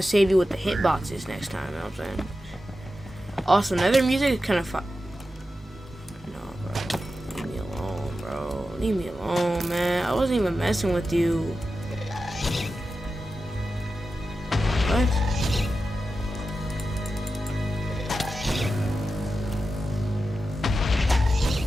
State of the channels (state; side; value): normal; both; correlation 0.91